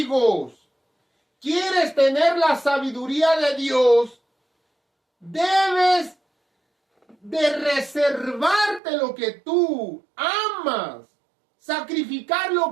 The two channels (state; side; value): drops out; left; at 8.8 s